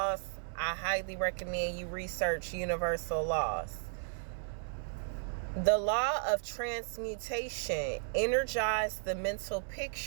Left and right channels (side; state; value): left; silent; 55 dB below the other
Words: I highly recommend you research universal laws. The law of transmutation energizes the mental